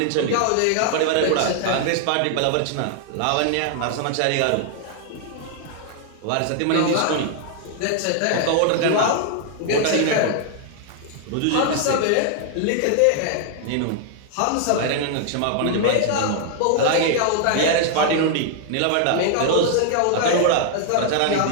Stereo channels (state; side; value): different; both; correlation 0.00